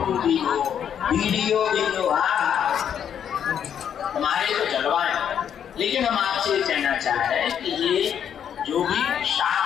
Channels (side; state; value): right; quieter; 8.7 dB